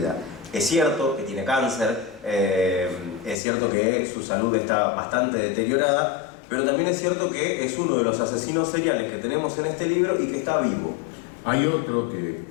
Es cierto que tiene cáncer, es cierto que su salud está bastante deteriorada, pero también es cierto que es uno de los asesinos seriales que tenemos en este libro y que está vivo. Hay otro que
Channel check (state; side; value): drops out; right; at 3.4 s